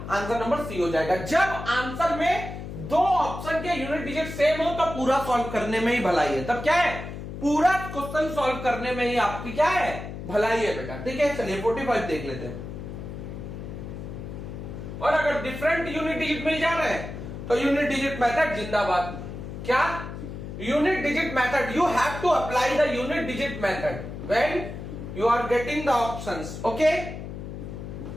नंबर सी हो जाएगा। जब आंसर में दो ऑप्शन के यूनिट डिजिट सेम हो तो पूरा सॉल्व करने में ही भलाई है। तब क्या है? पूरा क्वेश्चन सॉल्व करने में ही आपकी क्या है? भलाई है बेटा, ठीक है। चलिए 45 देख लेते हैं। और अगर डिफरेंट यूनिट डिजिट मिल जा रहे हैं तो यूनिट डिजिट मेथड जिंदाबाद। क्या? Unit digit method, you have to apply the unit digit method when you are getting the options, okay.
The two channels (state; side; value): noise; left; hum, 9 dB below the sound